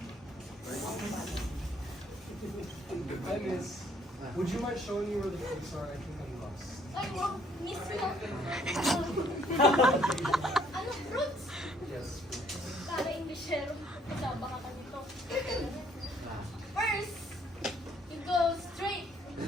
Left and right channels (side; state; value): both; normal; correlation 0.64